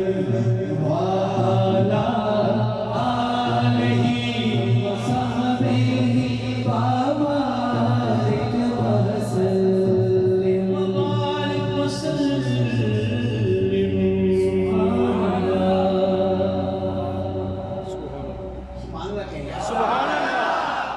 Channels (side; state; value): both; identical; correlation 1.00